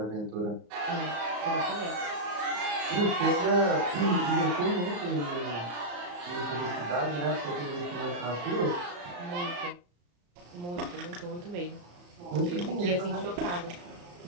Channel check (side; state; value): left; late; 34 ms